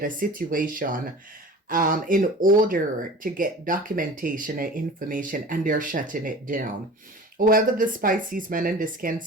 a situation in order to get documentation and information, and they're shutting it down. Whoever this Pisces man and this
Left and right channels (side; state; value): both; normal; correlation 0.39